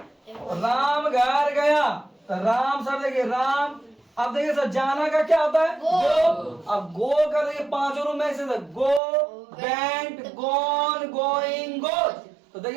राम घर गया, तो राम सर देखिए, राम। अब देखिए सर, जाना का क्या होता है? गो। अब गो का देखिए पांचों रूप में से गो, वेंट, गॉन, गोइंग, गोज। तो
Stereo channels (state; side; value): drops out; left; at 9.0 s